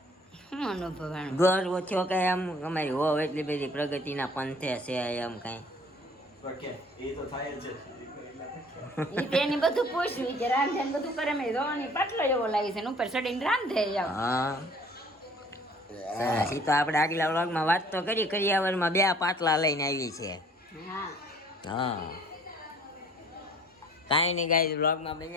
શું અનુભવાણું ગર્વ થયો કઈ એમ અમારી વહુ એટલી બધી પ્રગતિના પંથે છે એમ કઈ ઈ તેની બધું પૂછ્યું કે રાંધે ને બધું કરે મેં રોવાની પાટલો એવો લાગે છે ને ઉપર ચડીને રાંધે જાવ હા સરસ. ઈ તો આપણે આગલા વ્લોગમાં વાત તો કરી કરિયાવરમાં 2 પાટલા લઈને આવી છે. હા હા કાંઈ નહીં ગાઈસ વ્લોગમાં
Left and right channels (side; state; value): both; normal; correlation 0.54